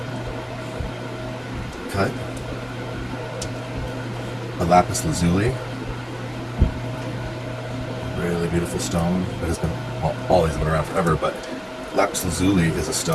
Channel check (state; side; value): identical; both; correlation 1.00